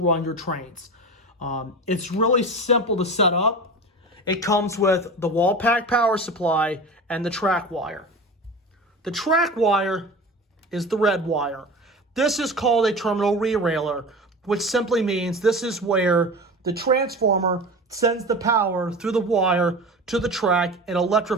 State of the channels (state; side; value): normal; both; correlation 0.31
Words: your trains. It's really simple to set up. It comes with the wall pack power supply and the track wire. The track wire is the red wire. This is called a terminal re-railer, which simply means this is where the transformer sends the power through the wire to the track and